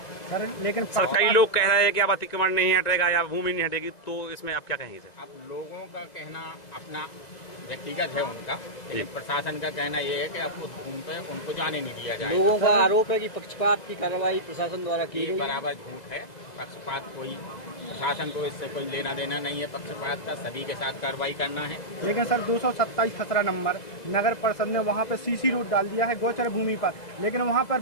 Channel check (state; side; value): late; right; 2.0 ms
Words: लेकिन सर कई लोग कह रहे हैं कि अब अतिक्रमण नहीं हटेगा या भूमि नहीं हटेगी, तो इसमें आप क्या कहेंगे सर? अब लोगों का कहना अपना व्यक्तिगत है उनका, लेकिन प्रशासन का कहना ये है कि अब उस भूमि पे उनको जाने नहीं दिया जाएगा। लोगों का आरोप है कि पक्षपात की कार्रवाई प्रशासन द्वारा की गई। बराबर झूठ है। पक्षपात कोई, प्रशासन को इससे कोई लेना देना नहीं है पक्षपात का, सभी के साथ कार्रवाई करना है। लेकिन सर 227 खसरा नंबर नगर परिषद ने वहाँ पे सीसी रोड डाल दिया है गोचर भूमि पर, लेकिन वहाँ पर